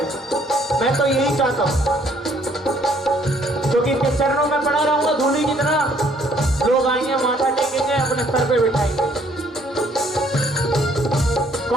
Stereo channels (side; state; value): both; normal; correlation 0.63